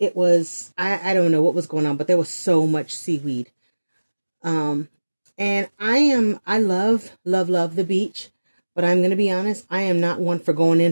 was, I don't know what was going on, but there was so much seaweed. And I love the beach, but I'm going to be honest, I am not one for going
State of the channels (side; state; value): both; inverted; correlation -1.00